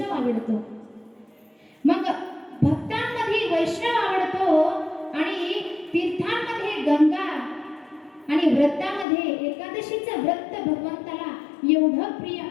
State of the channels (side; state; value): right; drops out; at 9.1 s